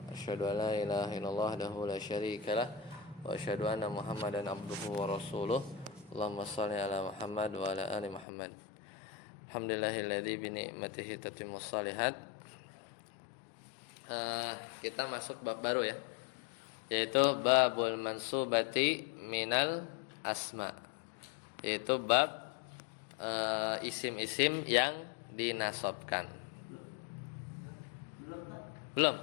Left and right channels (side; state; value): right; drops out; at 8.2 s